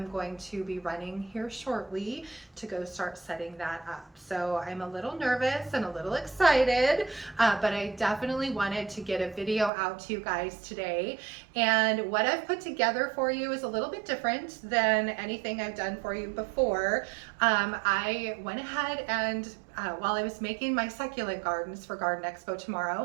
going to be running here shortly to go start setting that up. So I'm a little nervous and a little excited, but I definitely wanted to get a video out to you guys today. And what I've put together for you is a little bit different than anything I've done for you before. I went ahead and while I was making my succulent gardens for Garden Expo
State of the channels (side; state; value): left; drops out; at 9.7 s